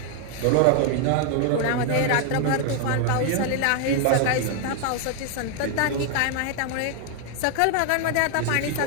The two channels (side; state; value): both; different; correlation 0.00